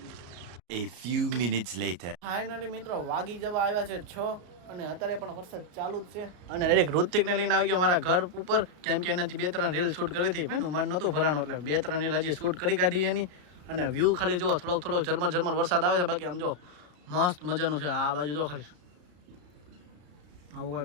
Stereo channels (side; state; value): left; late; 33 ms